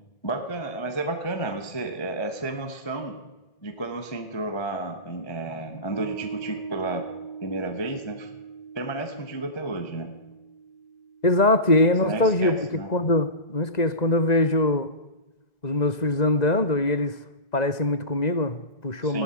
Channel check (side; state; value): right; late; 2.0 ms